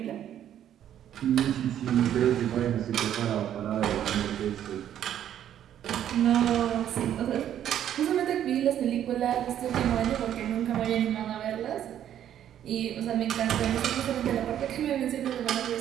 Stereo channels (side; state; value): left; quieter; 10.6 dB